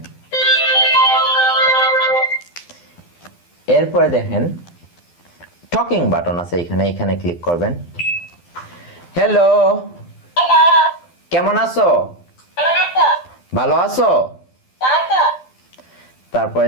এরপরে দেখেন টকিং বাটন আছে এখানে, এখানে ক্লিক করবেন। হ্যালো, কেমন আছো? ভালো আছো? তারপরে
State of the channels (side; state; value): right; late; 12 ms